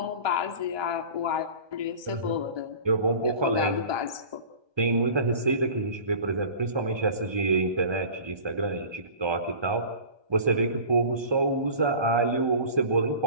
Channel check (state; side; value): late; left; 1.2 ms